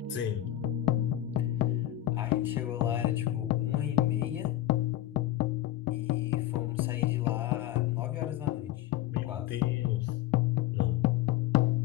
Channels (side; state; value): right; quieter; 14.1 dB